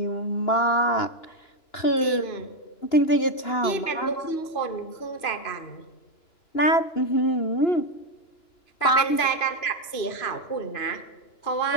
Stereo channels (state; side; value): late; right; 2.9 ms